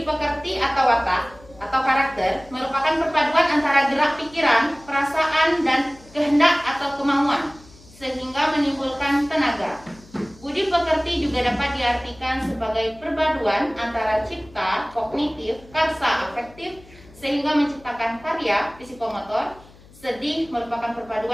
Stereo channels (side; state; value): left; noise; hum, 24 dB below the sound